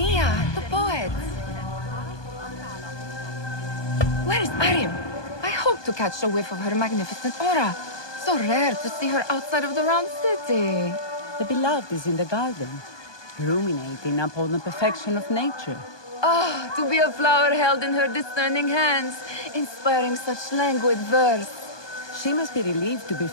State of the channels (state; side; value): late; right; 1.2 ms